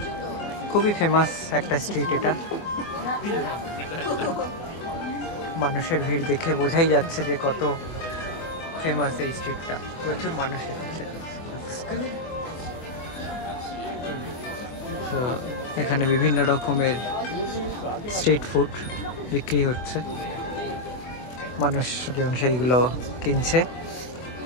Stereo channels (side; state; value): right; late; 24 ms